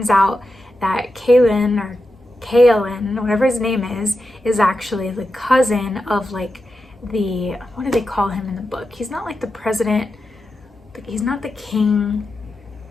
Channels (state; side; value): normal; both; correlation 0.89